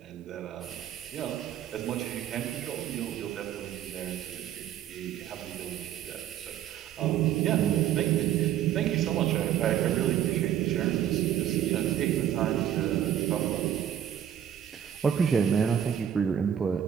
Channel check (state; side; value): quieter; left; 10.2 dB